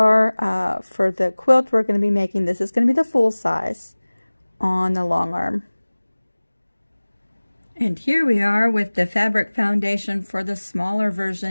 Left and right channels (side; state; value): both; inverted; correlation -1.00